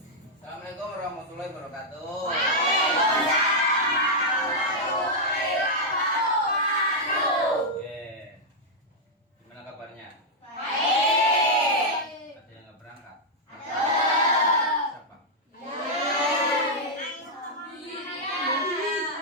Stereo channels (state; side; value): normal; both; correlation -0.04